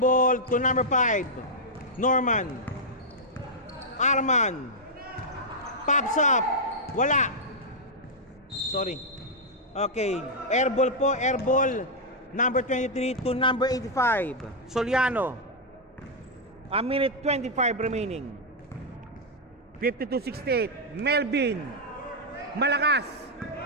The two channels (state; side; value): normal; both; correlation -0.05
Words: to number 5. Norman. Arman pops up. Wala. Sorry. Okay, airball po, airball. Number 23 to number 85. Soliano. A minute 25 remaining. 52-68. Melvin. Malakas.